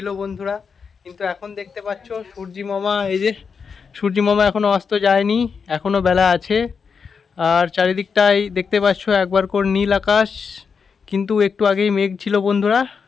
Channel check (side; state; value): right; quieter; 5.8 dB